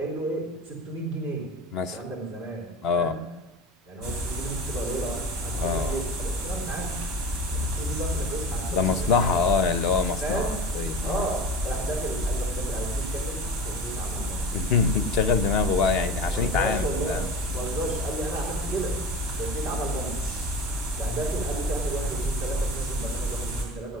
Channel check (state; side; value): normal; both; correlation 0.32